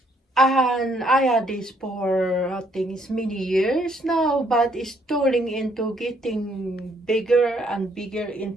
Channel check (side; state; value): both; normal; correlation 0.69